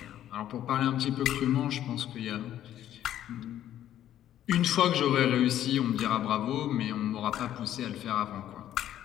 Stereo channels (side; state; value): right; quieter; 11.7 dB